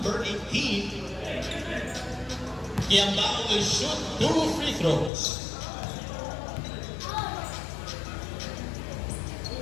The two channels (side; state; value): right; drops out; at 5.1 s